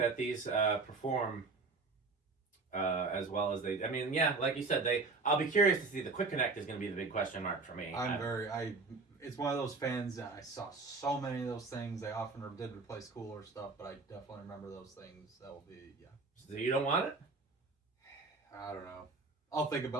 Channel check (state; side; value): quieter; left; 3.9 dB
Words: these perform as well as they. I mean, yeah, like you said, I'll be curious to see. The quick connect is going to be the big question mark for me. It's one of those fans that I saw so many of those things. They often did replace cooler stuff, but I definitely remember those things. That will be So you don't want it? I don't know. I'll think